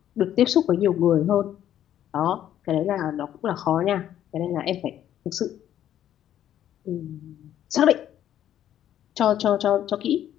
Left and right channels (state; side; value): quieter; right; 11.2 dB